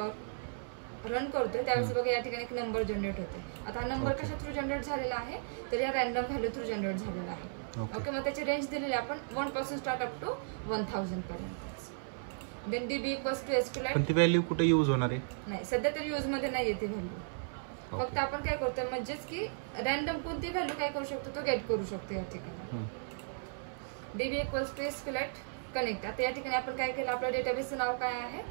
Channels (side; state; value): left; silent; 54 dB below the other